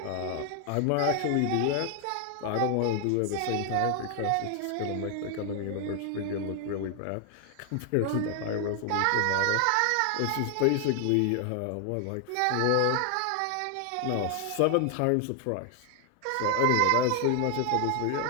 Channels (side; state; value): both; different; correlation 0.00